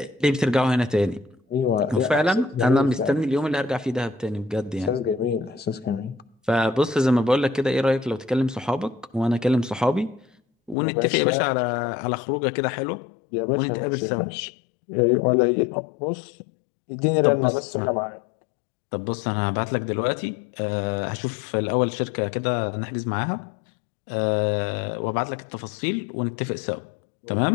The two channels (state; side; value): drops out; right; at 10.8 s